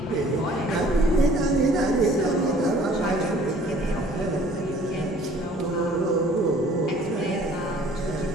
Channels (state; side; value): normal; both; correlation 0.54